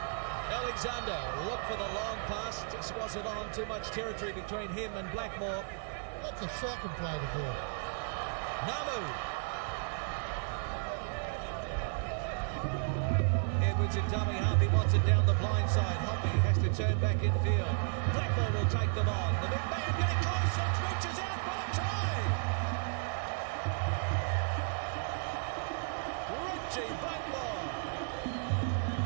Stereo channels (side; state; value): left; silent; 55 dB below the other